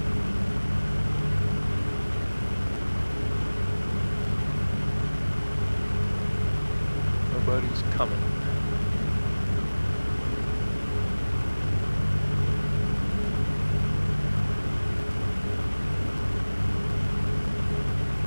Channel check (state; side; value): inverted; both; correlation -1.00